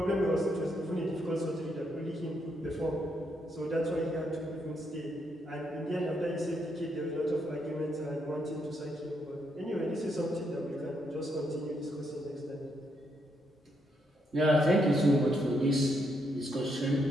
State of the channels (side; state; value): both; normal; correlation 0.77